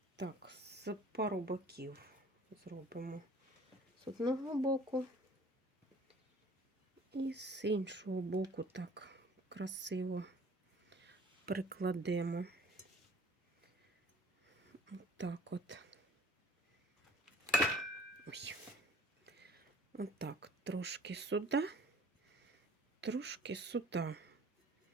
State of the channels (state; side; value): normal; both; correlation 0.51